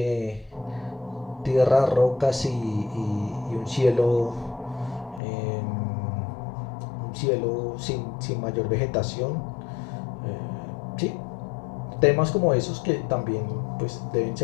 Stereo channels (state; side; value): drops out; right; at 5.2 s